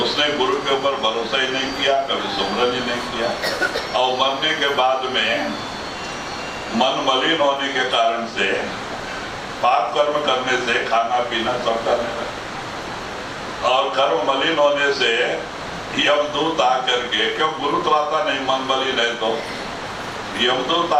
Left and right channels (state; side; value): identical; both; correlation 1.00